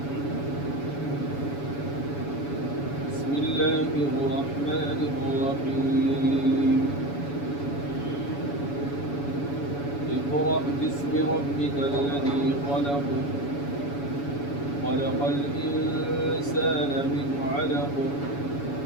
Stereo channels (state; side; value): late; right; 7.1 ms